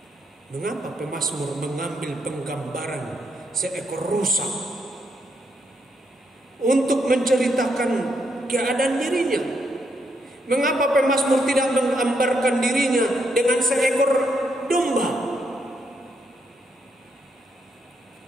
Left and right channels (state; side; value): normal; both; correlation 0.77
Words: Mengapa pemazmur mengambil penggambaran seekor rusa untuk menceritakan keadaan dirinya? Mengapa pemazmur tidak menggambarkan dirinya dengan seekor domba